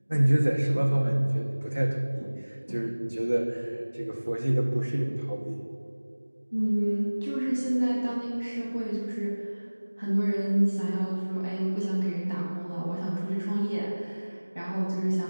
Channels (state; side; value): inverted; both; correlation -1.00